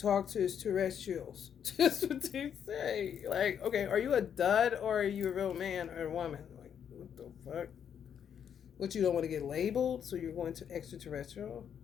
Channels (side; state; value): right; quieter; 8.3 dB